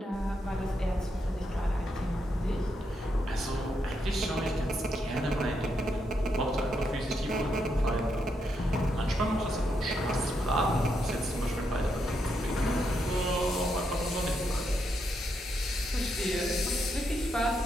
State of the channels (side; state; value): both; normal; correlation 0.80